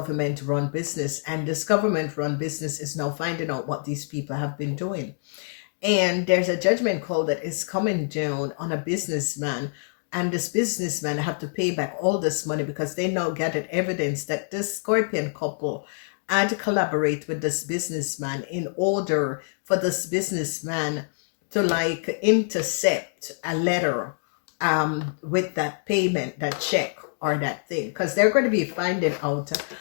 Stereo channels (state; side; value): silent; right; digital silence